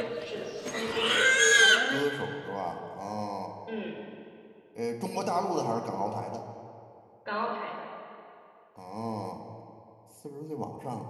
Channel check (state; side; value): identical; both; correlation 1.00